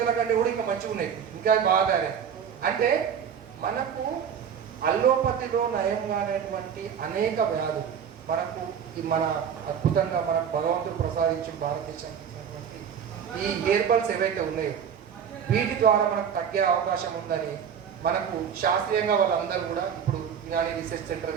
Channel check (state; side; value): quieter; left; 7.8 dB